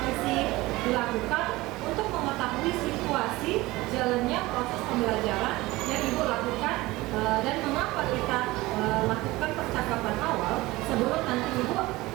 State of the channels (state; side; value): quieter; left; 19.8 dB